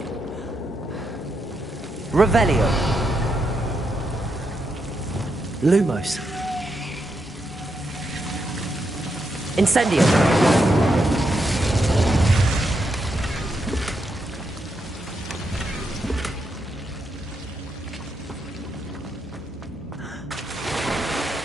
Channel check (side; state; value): both; normal; correlation 0.82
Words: Revelio. Lumos. Incendio.